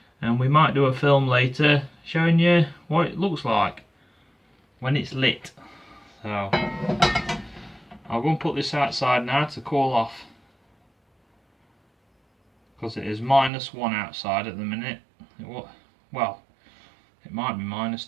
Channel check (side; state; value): left; drops out; at 13.5 s